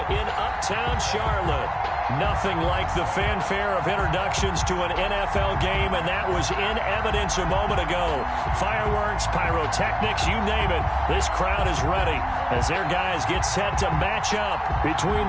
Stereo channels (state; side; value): identical; both; correlation 1.00